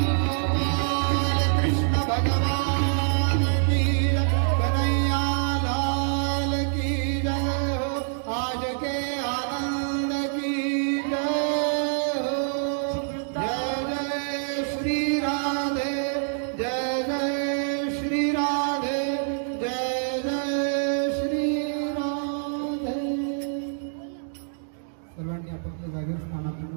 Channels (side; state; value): left; silent; digital silence